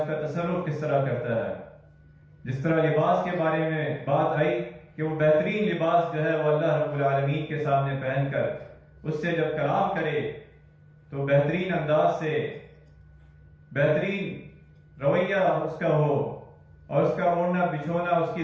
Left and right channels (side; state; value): both; identical; correlation 1.00